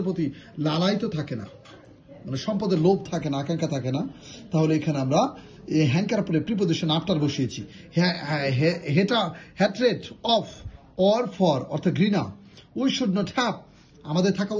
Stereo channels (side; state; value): both; identical; correlation 1.00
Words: প্রতি লালায়িত থাকে না, মানে সম্পদের লোভ থাকে না, আকাঙ্ক্ষা থাকে না। তাহলে এখানে আমরা হ্যাঙ্কার পরে প্রিপোজিশন আফটার বসিয়েছি। হ্যাট্রেড অফ অর ফর অর্থাৎ ঘৃণা। উই শুড নট হ্যাভ, আমাদের থাকা